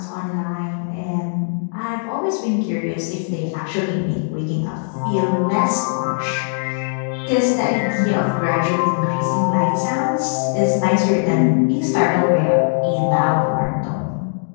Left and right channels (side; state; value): right; silent; digital silence